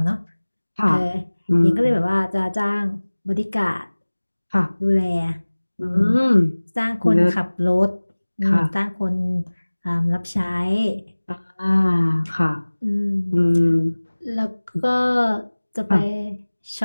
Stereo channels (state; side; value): inverted; both; correlation -1.00